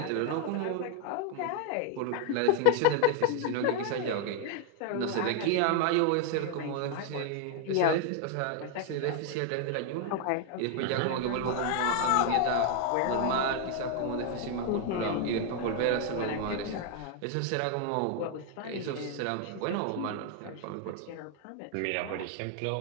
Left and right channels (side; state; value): both; different; correlation 0.00